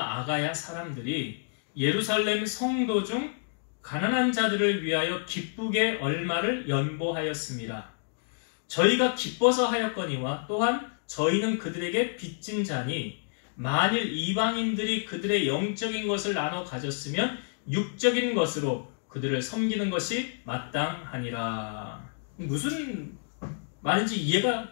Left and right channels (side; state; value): right; silent; digital silence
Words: 아가야 사람들이 예루살렘 성도 중 가난한 자들을 위하여 기쁘게 얼마를 연보하였습니다. 저희가 기뻐서 하였거니와 또한 저희는 그들에게 빚진 자니 만일 이방인들이 그들의 영적인 것을 나눠 가졌으면 육적인 것으로 그들을 섬기는 것이 마땅하니라. 무슨 말인지